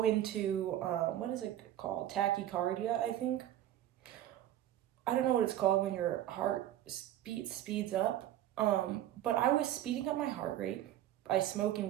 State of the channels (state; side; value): quieter; left; 12.5 dB